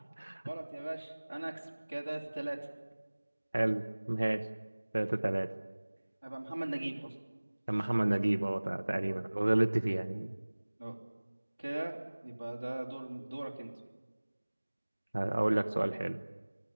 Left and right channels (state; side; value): inverted; both; correlation -1.00